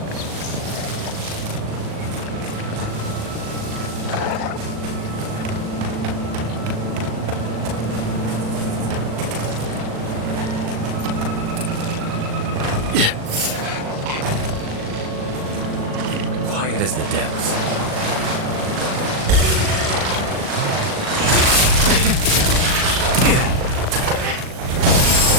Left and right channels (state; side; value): late; left; 38 ms